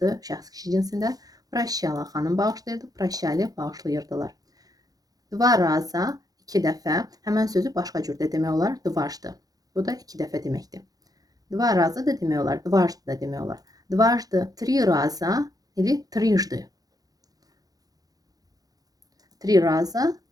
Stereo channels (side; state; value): left; late; 0.18 ms